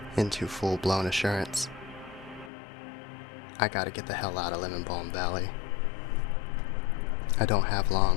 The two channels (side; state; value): right; drops out; at 2.5 s